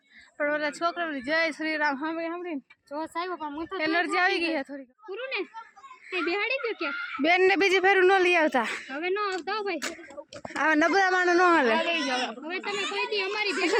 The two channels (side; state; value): both; identical; correlation 1.00